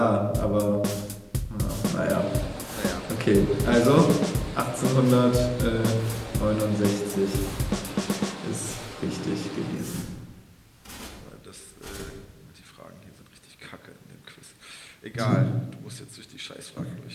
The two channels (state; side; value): identical; both; correlation 1.00